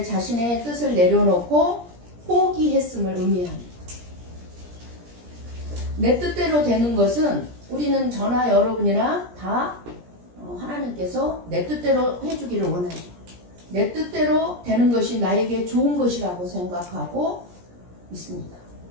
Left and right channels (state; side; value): late; left; 17 ms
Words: 자신의 뜻을 내려놓고 포기했음을 의미합니다. 내 뜻대로 되는 것은 우리는 저나 여러분이나 다 하나님께서 내 뜻대로 해주기를 원해요. 내 뜻대로 되는 것이 나에게 좋은 것이라고 생각하고 있습니다.